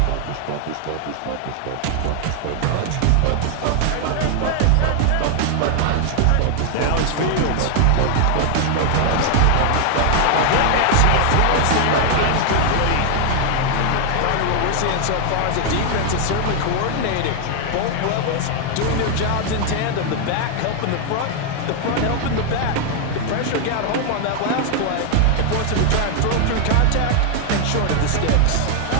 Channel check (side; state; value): both; different; correlation 0.00